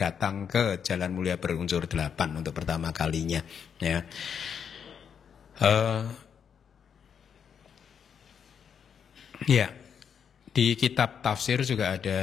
ke jalan mulia berunsur 8 untuk pertama kalinya, ya. Ya, di kitab tafsir juga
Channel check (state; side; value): quieter; right; 7.5 dB